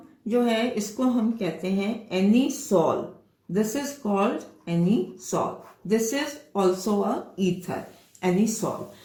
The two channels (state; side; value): identical; both; correlation 1.00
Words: जो है इसको हम कहते हैं anisole. This is called anisole. This is also a ether, anisole.